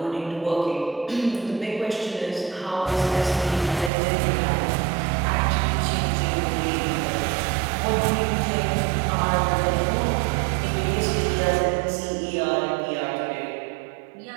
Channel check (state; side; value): drops out; left; at 3.9 s